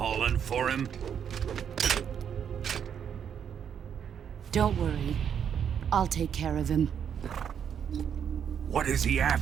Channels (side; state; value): left; quieter; 8.2 dB